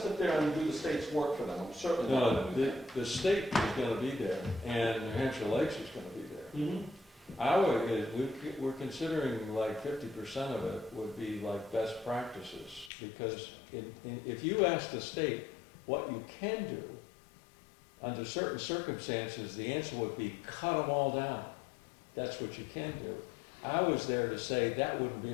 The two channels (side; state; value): right; drops out; at 12.9 s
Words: there and do the state's work for them, I'm certainly not No, gonna do that. the state is gonna be there, and New Hampshire Lakes is gonna be there. Mhm. We're considering like 50% of it would be like best practices, because if you ask the state what you can do, under certain circumstances, the answer would be cut them all down. That's what you can do. I was there to say that wouldn't